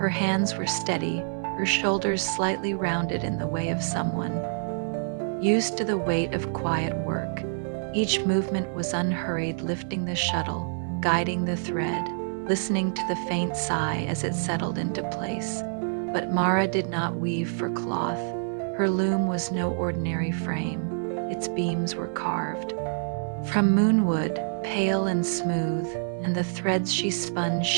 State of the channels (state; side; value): silent; left; digital silence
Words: hands were steady, her shoulders slightly rounded in the way of someone used to the weight of quiet work. Each movement was unhurried, lifting the shuttle, guiding the thread, listening to the faint sigh as it settled into place. But Mara did not weave for cloth. Her loom was no ordinary frame. Its beams were carved from moonwood, pale and smooth, and the threads she spun